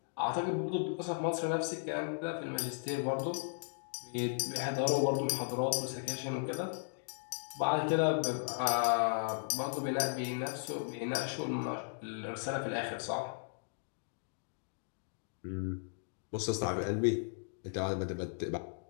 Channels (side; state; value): right; silent; digital silence